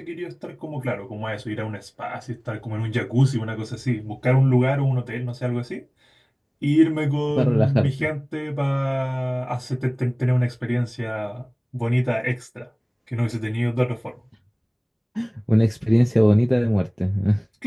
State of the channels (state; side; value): identical; both; correlation 1.00